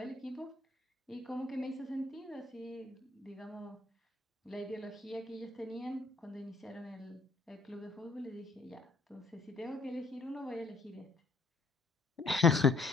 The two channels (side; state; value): right; quieter; 3.6 dB